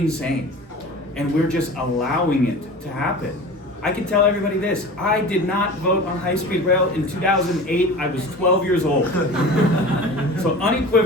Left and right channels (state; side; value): normal; both; correlation 0.36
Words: And we're just allowing it to happen. I can tell everybody this, I did not vote on high-speed rail in 2008, I was 12 years old. So